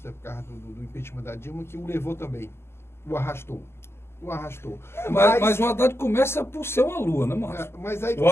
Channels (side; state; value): right; late; 0.12 ms